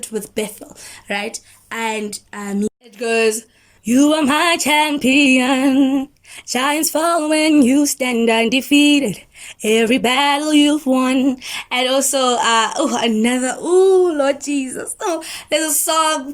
with Bethel, right? And it goes, "You are my champion. Giants fall when you stand undefeated. Every battle you've won." And also, Lord Jesus. Oh, there's a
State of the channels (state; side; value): identical; both; correlation 1.00